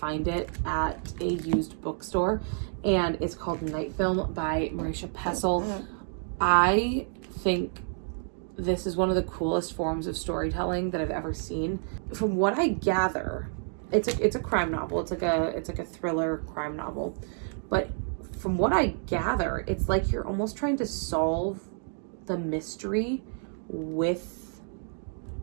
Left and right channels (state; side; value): silent; left; 57 dB below the other